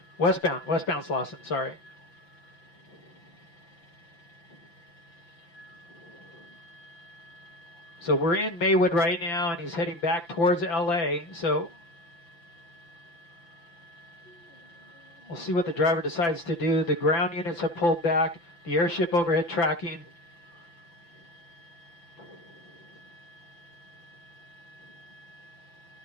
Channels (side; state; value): right; late; 5.9 ms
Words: Westbound Slauson, sorry. So we're in Maywood right now, and he's heading back towards LA. So we'll see what the driver decides to do. The ground units have pulled back. The airship overhead tracking.